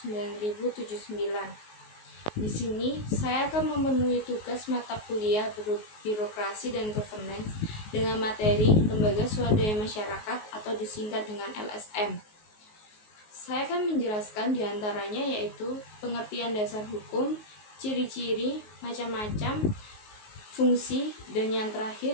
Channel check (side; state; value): right; late; 19 ms